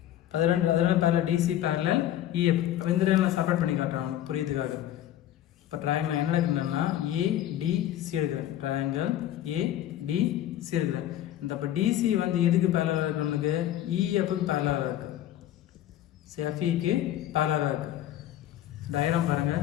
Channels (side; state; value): right; quieter; 12.4 dB